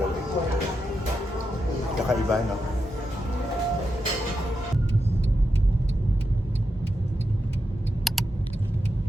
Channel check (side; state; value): both; normal; correlation 0.87